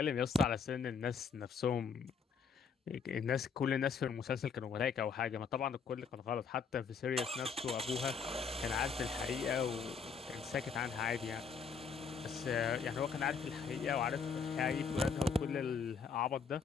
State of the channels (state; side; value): quieter; right; 5.7 dB